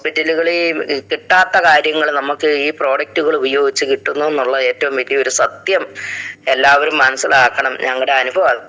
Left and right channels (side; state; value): both; identical; correlation 1.00